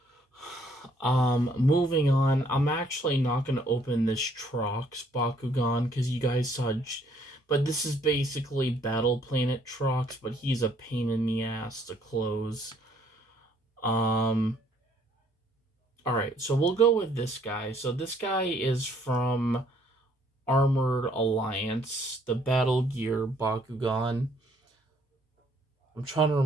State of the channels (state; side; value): normal; both; correlation 0.64